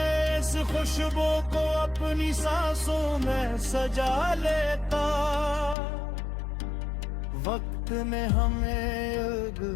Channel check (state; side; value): drops out; right; at 5.8 s